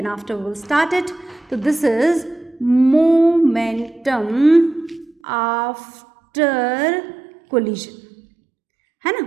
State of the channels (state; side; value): drops out; left; at 5.2 s